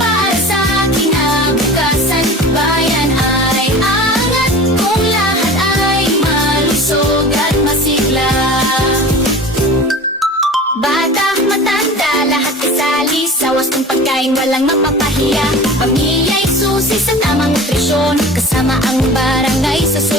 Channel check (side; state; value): both; normal; correlation 0.38